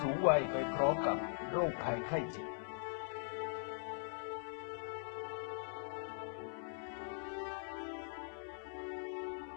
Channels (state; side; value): silent; right; 50 dB below the other